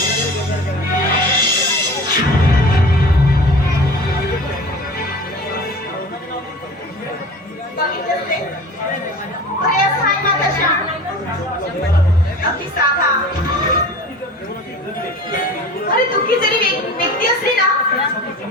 बघितलंस रे? अरे असं आहे माझा श्याम. अगदी साधा. अरे दुःखी जरी व्यक्ती असली ना,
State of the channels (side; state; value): both; normal; correlation 0.38